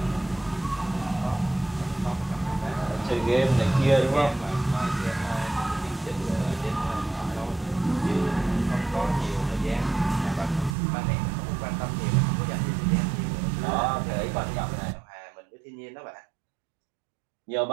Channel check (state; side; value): drops out; left; at 10.8 s